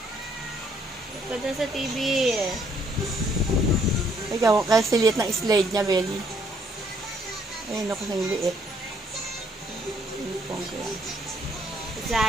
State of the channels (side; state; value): both; normal; correlation 0.68